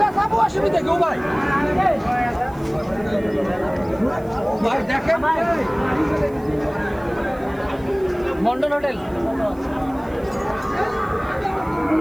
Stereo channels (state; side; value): noise; right; hiss, 28 dB below the sound